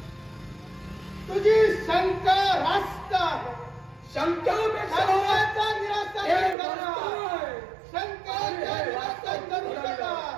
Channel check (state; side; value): drops out; left; at 6.6 s